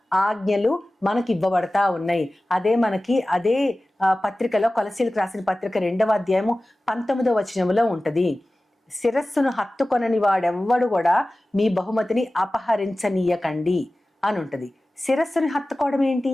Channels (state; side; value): normal; both; correlation 0.96